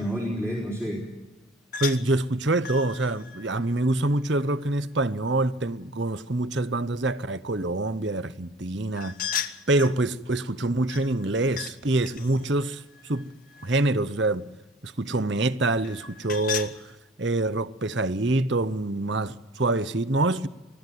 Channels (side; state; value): both; normal; correlation 0.47